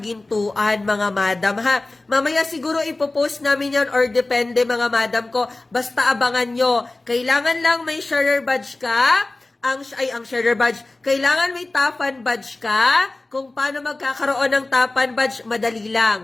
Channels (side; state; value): right; quieter; 3.0 dB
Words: mga madam, ha? Mamaya siguro ipopost namin yan or depende, mga madam ko. Basta abangan nyo. Kailangan lang may sharer badge ka. Ang sharer badge. Kailangan may Tafan badge ka. Kung paano magkakaroon ng Tafan badge, madali